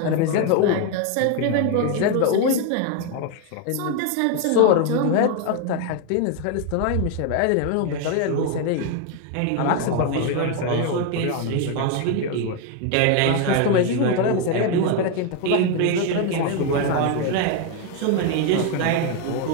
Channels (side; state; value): both; different; correlation 0.01